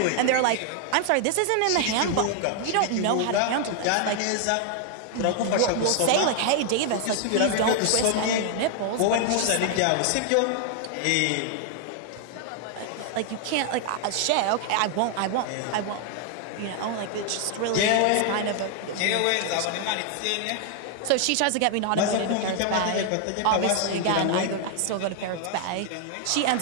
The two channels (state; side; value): different; both; correlation 0.00